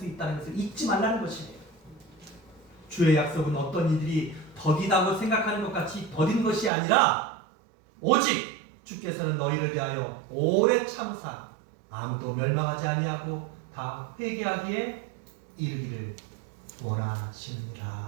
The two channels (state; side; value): drops out; left; at 6.7 s